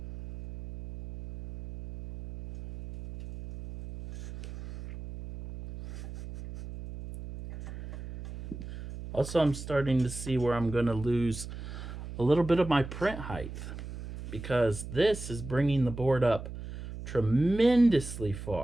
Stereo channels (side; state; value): right; noise; hum, 11 dB below the sound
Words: Also, I'm starting to see where I'm going to lose a little bit of my print height because this is bringing the board up tremendously